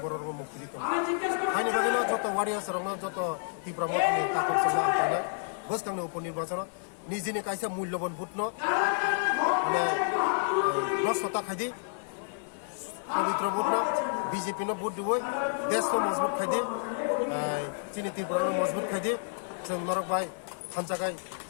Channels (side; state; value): right; silent; 58 dB below the other